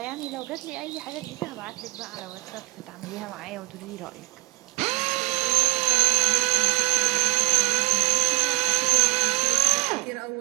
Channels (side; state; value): left; quieter; 23.6 dB